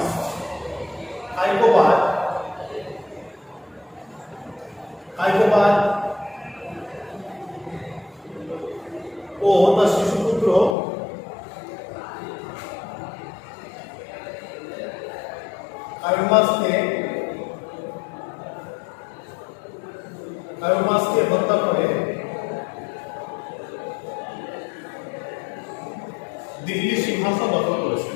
ও তার শিশুপুত্র কায়ুমাসকে হত্যা করে দিল্লির সিংহাসন দখল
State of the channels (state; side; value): drops out; right; at 10.8 s